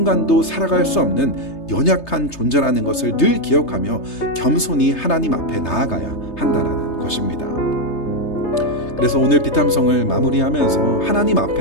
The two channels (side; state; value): right; late; 3.3 ms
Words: 살아갈 수 없는 연약한 존재라는 것을 늘 기억하며 겸손히 하나님 앞에 나아가야 한다는 것입니다. 그래서 오늘 비탐성을 마무리하면서 하나님